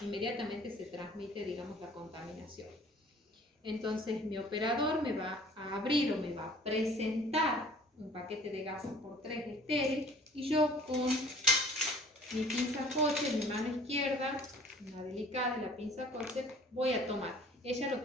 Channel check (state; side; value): normal; both; correlation 0.51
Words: se transmite, digamos, la contaminación. Entonces mi operador me va a abrir o me va a presentar un paquete de gasas por 3 estéril, y yo con mi pinza Kocher, mi mano izquierda, una delicada, la pinza Kocher, voy a tomar. Ella lo